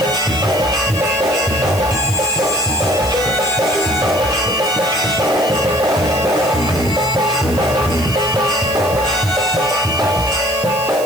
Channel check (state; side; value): noise; right; hiss, 13 dB below the sound